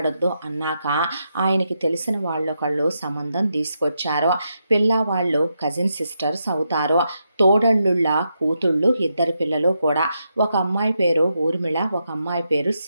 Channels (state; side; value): inverted; both; correlation -0.83